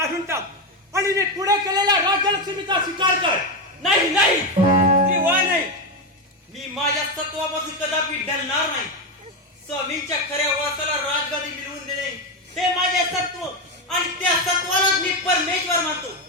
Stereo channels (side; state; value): both; normal; correlation 0.10